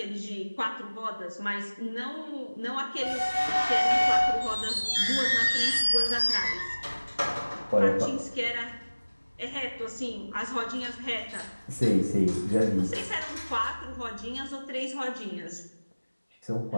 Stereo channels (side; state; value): both; inverted; correlation -1.00